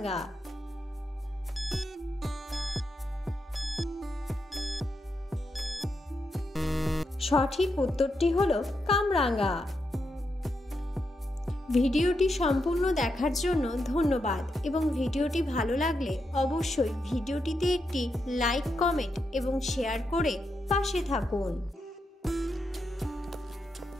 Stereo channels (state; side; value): normal; both; correlation 0.84